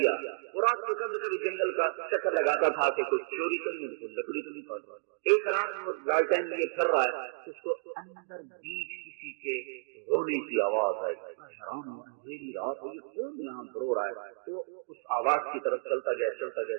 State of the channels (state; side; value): silent; left; digital silence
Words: وہ رات کو کبھی کبھی جنگل کا چکر لگاتا تھا کہ کچھ چوری تو نہیں، کچھ لکڑی تو نہیں کاٹ رہا۔ ایک رات وہ لالٹین لیے پھر رہا ہے، اس کو اندر بیچ کسی کے رونے کی آواز آئی، حیران ہوا، اندھیری رات ہوئی، کون یہاں رو رہا ہے؟ تو اس آواز کی طرف چلتا